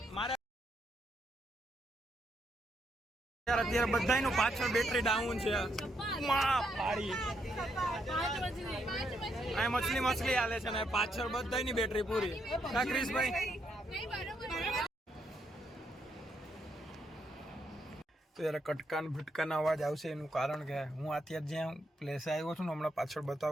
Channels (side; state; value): both; normal; correlation 0.77